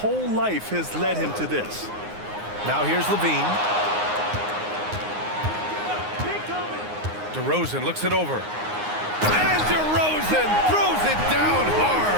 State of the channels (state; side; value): late; left; 9.6 ms